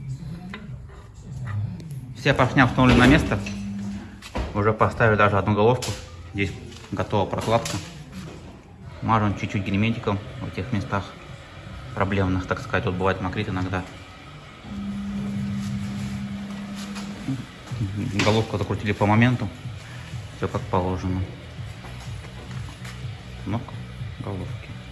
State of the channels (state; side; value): identical; both; correlation 1.00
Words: Все поршня установлены на место. Уже поставили даже одну головку. Здесь готова прокладка. Мажем чуть-чуть герметиком в этих местах проблемных, так сказать. Вот бывает мокрит иногда. Головку закрутили по моменту. Все как положено. Кнопка головки.